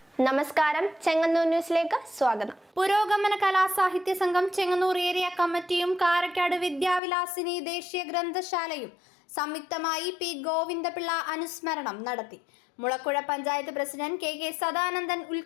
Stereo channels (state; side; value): drops out; right; at 7.0 s